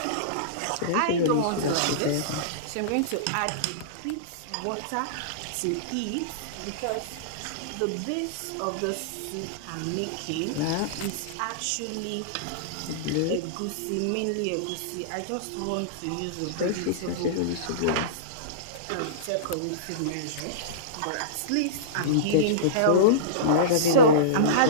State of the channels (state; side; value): different; both; correlation -0.05